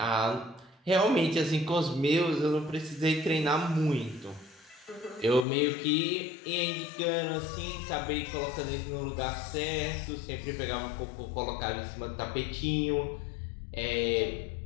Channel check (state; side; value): drops out; right; at 5.5 s